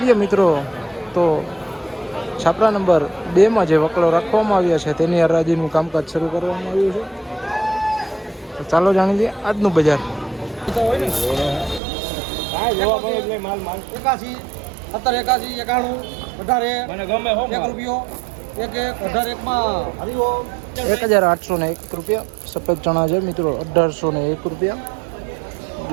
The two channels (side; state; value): left; drops out; at 11.8 s